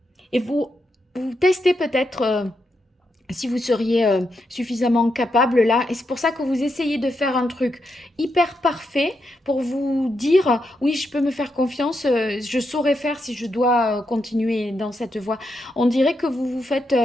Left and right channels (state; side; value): normal; both; correlation 0.83